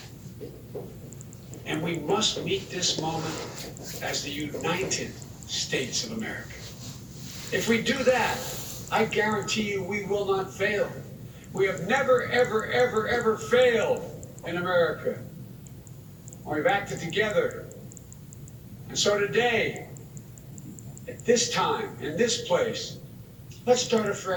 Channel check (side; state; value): both; identical; correlation 1.00